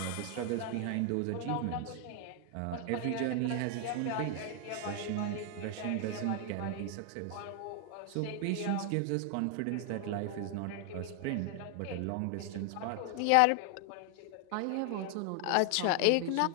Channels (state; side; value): different; both; correlation 0.00